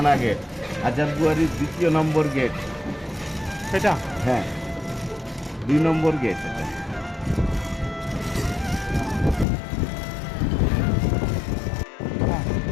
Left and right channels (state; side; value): drops out; right; at 9.5 s